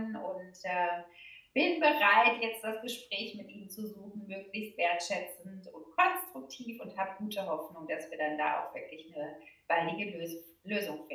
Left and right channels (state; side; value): identical; both; correlation 1.00